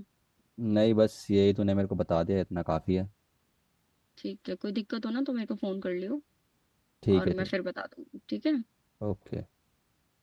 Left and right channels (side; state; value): both; identical; correlation 1.00